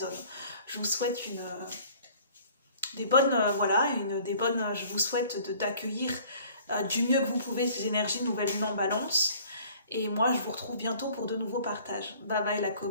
Je vous souhaite je vous souhaite d'accueillir du mieux que vous pouvez ces énergies nouvelle lune en balance. Et moi, je vous retrouve bientôt pour de nouveaux partages. Bye bye la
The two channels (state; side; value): inverted; both; correlation -0.52